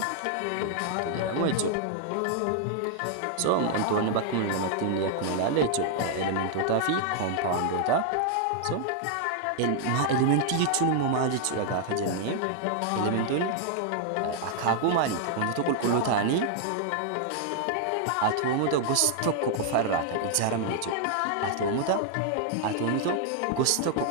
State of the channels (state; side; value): different; both; correlation 0.00